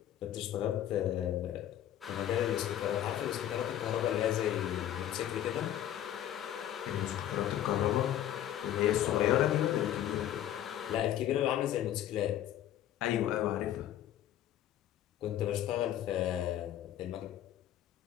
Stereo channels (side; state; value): right; quieter; 11.7 dB